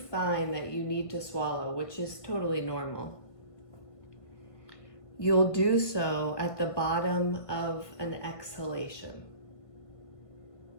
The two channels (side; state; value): right; late; 1.5 ms